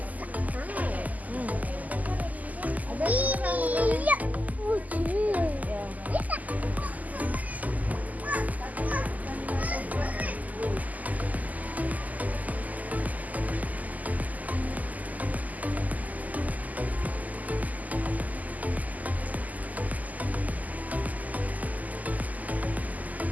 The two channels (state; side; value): late; left; 0.079 ms